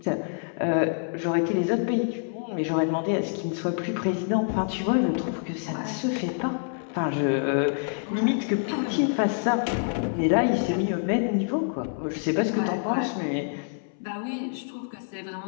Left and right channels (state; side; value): silent; right; 60 dB below the other